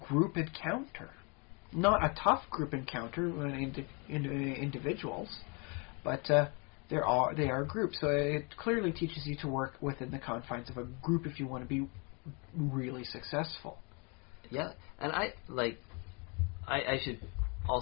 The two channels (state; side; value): quieter; right; 32.6 dB